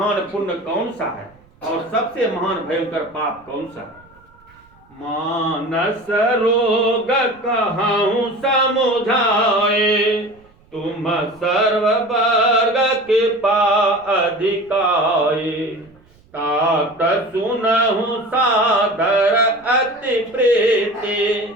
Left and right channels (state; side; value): noise; right; rumble, 30 dB below the sound